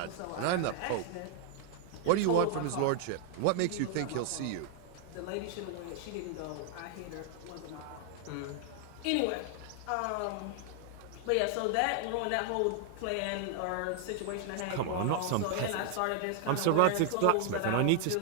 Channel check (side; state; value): both; different; correlation 0.00